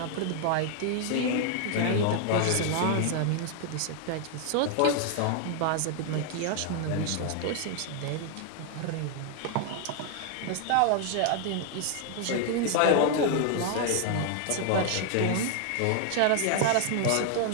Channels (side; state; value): both; different; correlation 0.00